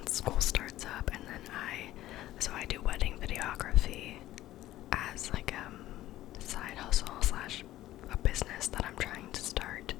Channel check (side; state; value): right; quieter; 14.8 dB